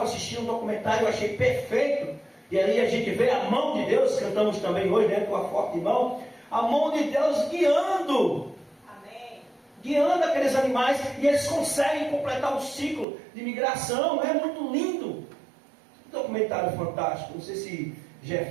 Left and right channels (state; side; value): drops out; left; at 13.1 s